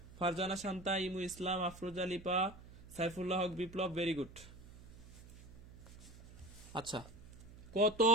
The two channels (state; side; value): noise; right; hum, 17 dB below the sound